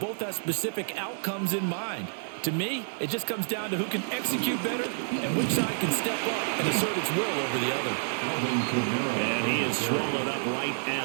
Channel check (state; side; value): silent; left; 59 dB below the other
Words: have specific outcomes in mind. To me, it just comes down to who can execute better and which side can step up and assert its will over the other. And he is swallowed up right